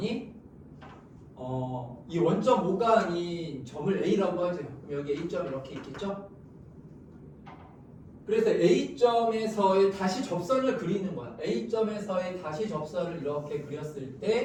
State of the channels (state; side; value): identical; both; correlation 1.00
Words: 이 원점 5가 아닌 점을 A라고 하죠. 그럼 여기 A점 이렇게 있겠죠? 그래서 A점에서의 다시 접선을 그리는 거야. A점에서의 다시 접선을 이렇게 그렸을